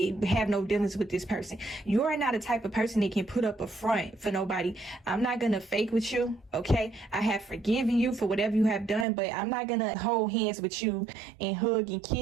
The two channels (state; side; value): drops out; left; at 9.1 s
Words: have no dealings with this person. You are not a type of person that can put up a front for nobody. I'm not going to fake with you, okay? I have forgiven you for whatever you have done, but I'm not going to hold hands with you and hug and